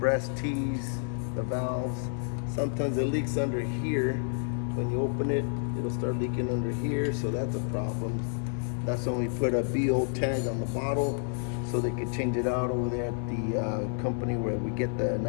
tees, the valves. Sometimes it leaks under here. When you open it, it'll start leaking under here, so that's a problem. That's when we put a BO tag on the bottle so they can change it out over there at the company where we get the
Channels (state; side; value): silent; right; 58 dB below the other